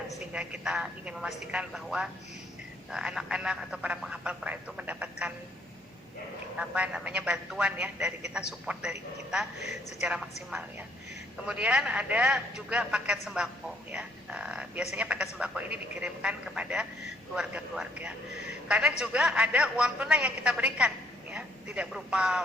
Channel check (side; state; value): both; normal; correlation 0.67